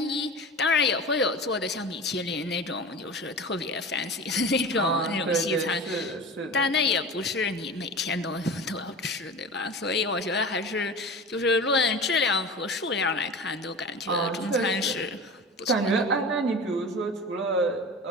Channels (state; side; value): normal; both; correlation 0.33